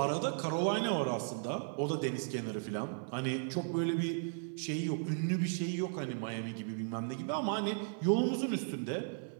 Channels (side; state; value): left; silent; 54 dB below the other